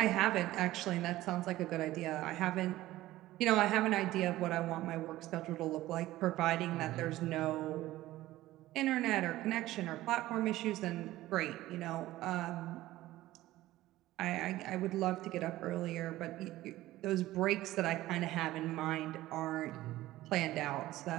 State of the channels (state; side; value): quieter; left; 16.1 dB